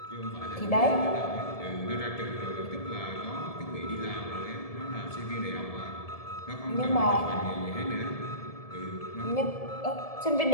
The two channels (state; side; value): late; right; 1.7 ms